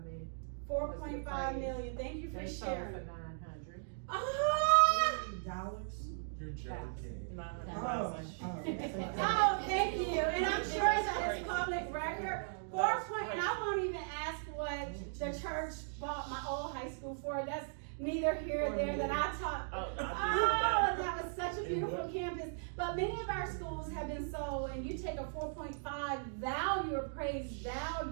million. 4.5 million. Thank you for They sold for sharing. 900. Ah! Dollars? You're joking. Oh. Oh, thank you. And I'm sure that it's public record. 4 point, and I won't even ask what the church bought my old high school for. That's neither here nor there that I taught. Oh, Oh, that was such a beautiful campus. But many of our schools have been sold, and you take a 4.5 value, appraised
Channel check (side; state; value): left; silent; digital silence